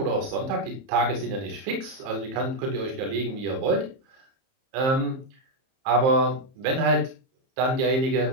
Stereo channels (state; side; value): late; left; 30 ms